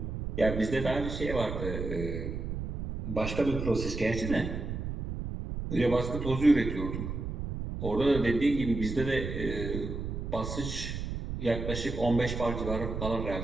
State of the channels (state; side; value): noise; right; rumble, 5 dB below the sound